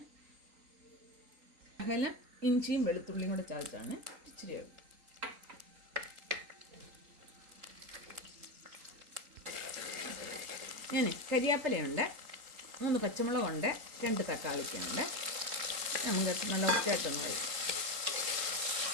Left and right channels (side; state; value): left; late; 3.8 ms